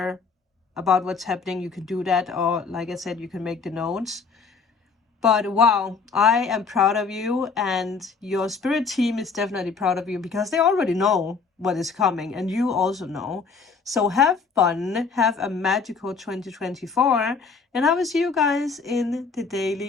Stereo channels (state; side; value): quieter; right; 5.0 dB